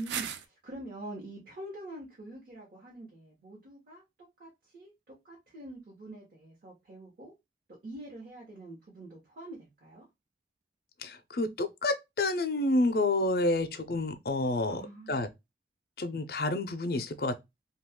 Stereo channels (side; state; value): both; normal; correlation 0.29